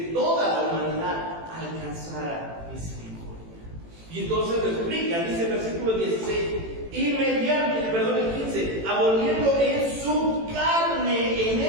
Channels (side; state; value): left; late; 18 ms